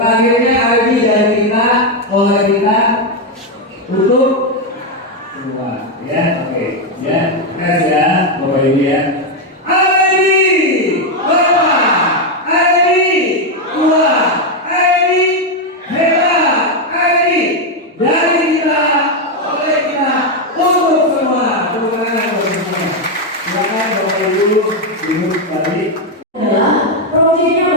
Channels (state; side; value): normal; both; correlation 0.04